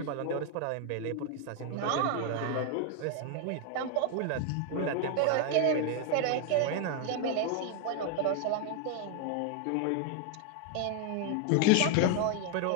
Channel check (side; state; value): both; different; correlation 0.01